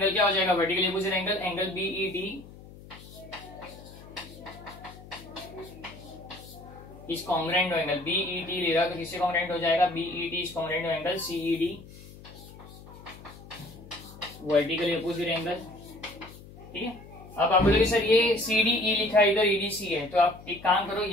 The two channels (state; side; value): noise; left; hum, 18 dB below the sound